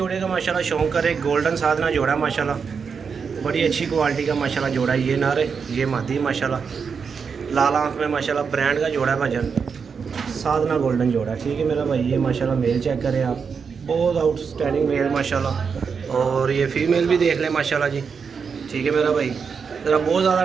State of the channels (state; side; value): quieter; left; 5.9 dB